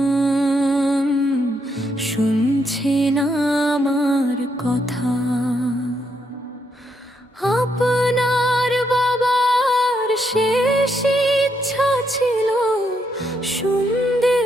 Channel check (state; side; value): normal; both; correlation 0.77